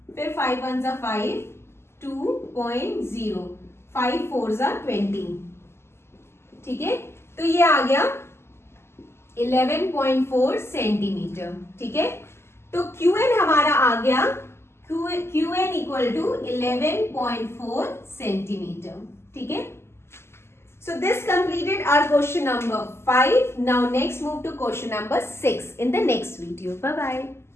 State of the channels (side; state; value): right; late; 0.12 ms